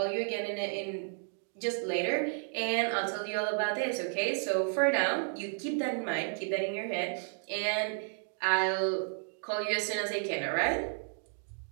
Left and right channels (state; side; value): silent; left; 55 dB below the other